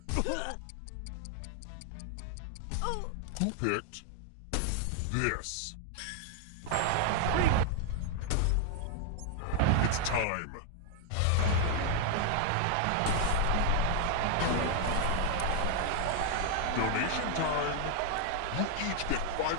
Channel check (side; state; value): both; different; correlation 0.00